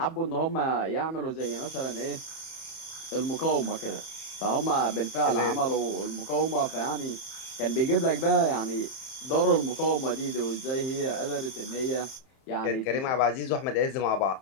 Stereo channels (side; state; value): right; late; 31 ms